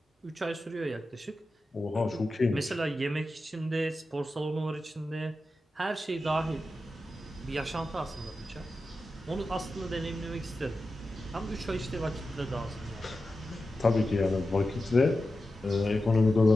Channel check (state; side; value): normal; both; correlation 0.92